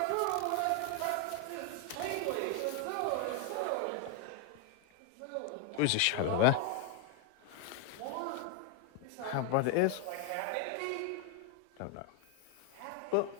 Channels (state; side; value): different; both; correlation 0.01